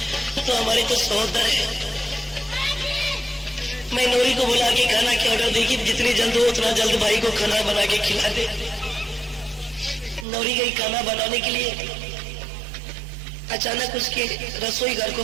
तो हमारे तो सहोदर है। मैं नौरी को बुला के खाना के ऑर्डर दी कि जितनी जल्द हो उतना जल्द भाई को खाना बना के खिला दे। नौरी गई खाना बनाने के लिए, अचानक उसके रसोई घर को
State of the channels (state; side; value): drops out; left; at 10.2 s